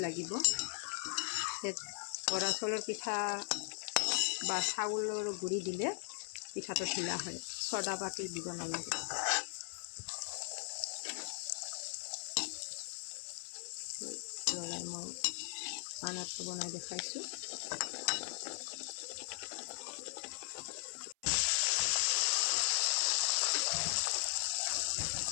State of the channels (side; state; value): right; silent; 52 dB below the other